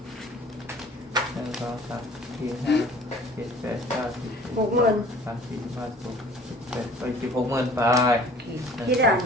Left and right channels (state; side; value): normal; both; correlation 0.50